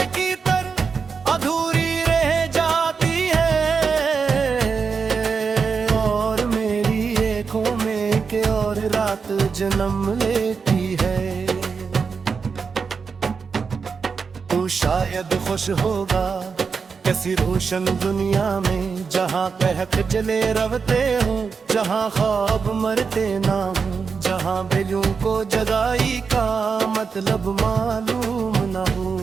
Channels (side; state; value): left; quieter; 5.5 dB